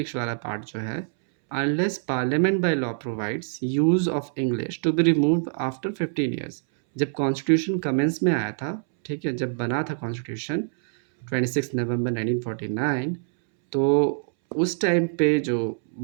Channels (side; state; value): left; silent; 62 dB below the other